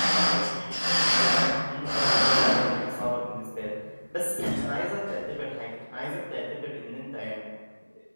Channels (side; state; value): both; inverted; correlation -1.00